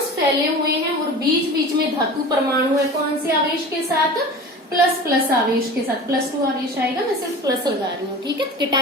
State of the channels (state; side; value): normal; both; correlation 0.35